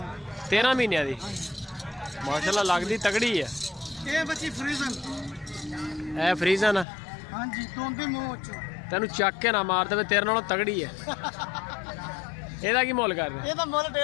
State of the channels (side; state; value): right; drops out; at 6.9 s